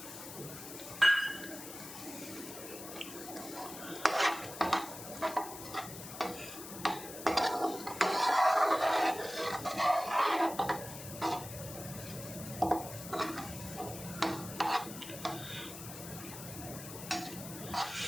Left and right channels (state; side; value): noise; left; hiss, 11 dB below the sound